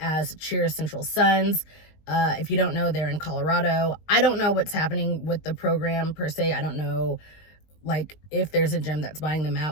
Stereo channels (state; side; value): late; right; 19 ms